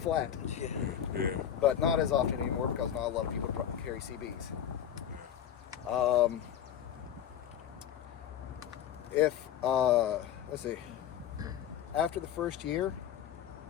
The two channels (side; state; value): right; quieter; 9.7 dB